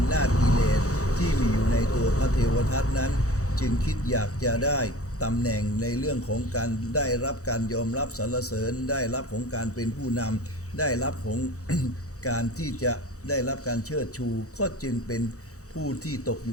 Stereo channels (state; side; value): late; right; 0.65 ms